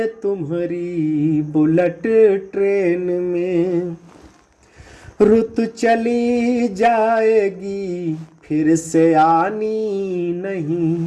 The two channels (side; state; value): both; identical; correlation 1.00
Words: तुम्हारी बुलेट ट्रेन में। रुत चली जाएगी फिर से आनी